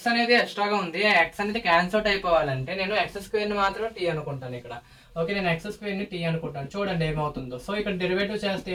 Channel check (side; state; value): both; identical; correlation 1.00